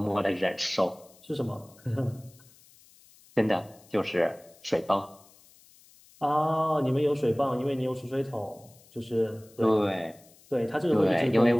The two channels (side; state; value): left; noise; hiss, 27 dB below the sound